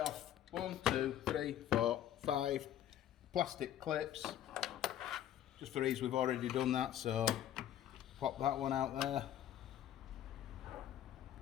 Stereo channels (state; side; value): quieter; right; 11.4 dB